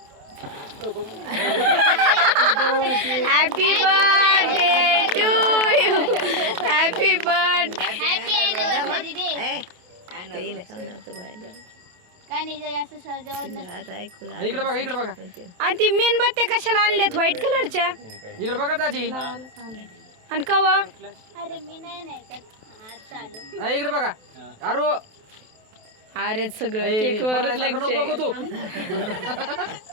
Happy birthday to you. Happy birthday. Happy anniversary day. काय नाही जर असं सजावट नसते. इकडे बघा इकडे बघा आणि ती मेणबत्त्या कशाला आणल्यात व्हाईट कलरच्या? इकडे बघा दाजी आणि कवा? अरे मी नाही त्यात हात चालू. इकडे बघा अरे अरे सगळं केक वर लक्ष.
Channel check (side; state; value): left; late; 28 ms